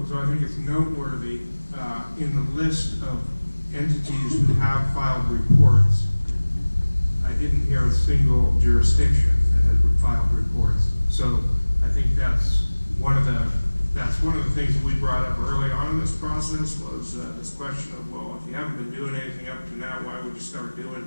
I think it's noteworthy in the list of entities who have filed reports, I didn't hear a single jurisdiction that has filed reports. So I think that's one of the things that we brought up early on in this process was this question of, well, if you haven't been doing anything up to now, why would you start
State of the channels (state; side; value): inverted; both; correlation -1.00